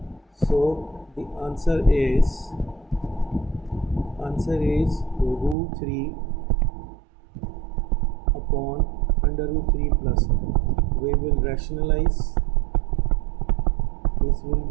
So the answer is root 3 upon under root 3 plus 1. We will rationalize. This will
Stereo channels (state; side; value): drops out; left; at 5.6 s